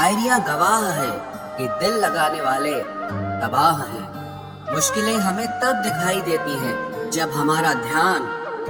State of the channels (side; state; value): both; identical; correlation 1.00